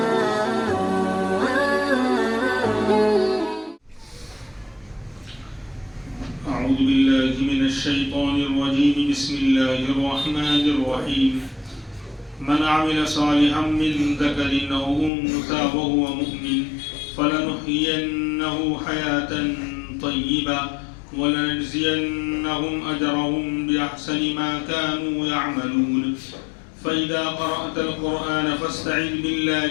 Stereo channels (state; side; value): drops out; right; at 15.1 s